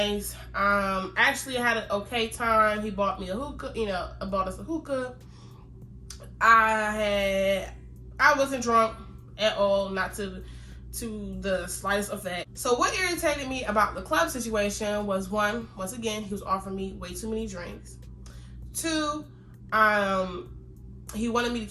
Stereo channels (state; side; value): identical; both; correlation 1.00